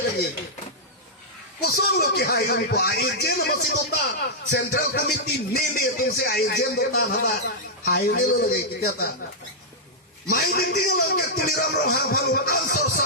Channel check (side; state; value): both; normal; correlation -0.09